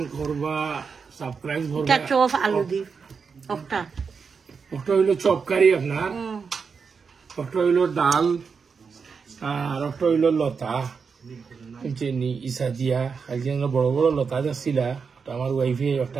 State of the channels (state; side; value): quieter; left; 5.6 dB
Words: করবা, সাবস্ক্রাইব করবা। এটা চপ আলু দি ওটা হইলো চপ কারি আপনার, ওটা হইলো ডাল আর ওটা হইলো লতা চিনি ইসা দিয়া একজন বড় বড় লতা যাচ্ছিলা আমার ওয়াইফে